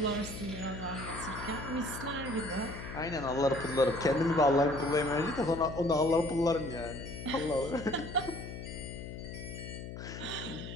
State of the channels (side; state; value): left; noise; hum, 9 dB below the sound